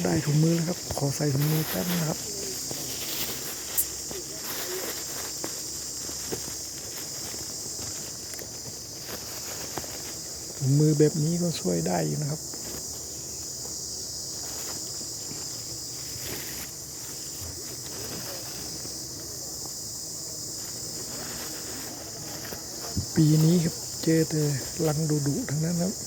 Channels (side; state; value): both; identical; correlation 1.00